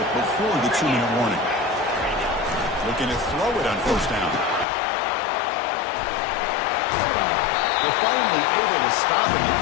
before the 2-minute warning. Looking to throw it on first down. They're finally able to stop him. The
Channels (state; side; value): drops out; right; at 4.7 s